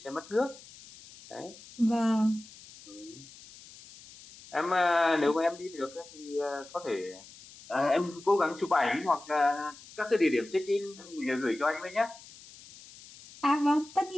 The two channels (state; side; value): noise; left; hiss, 20 dB below the sound